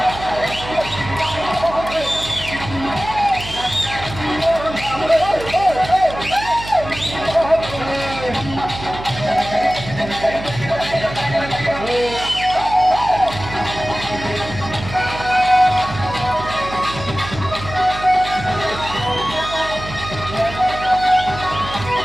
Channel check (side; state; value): right; noise; hum, 11 dB below the sound